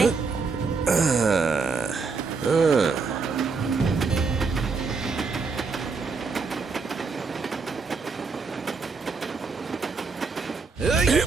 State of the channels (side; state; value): left; quieter; 4.7 dB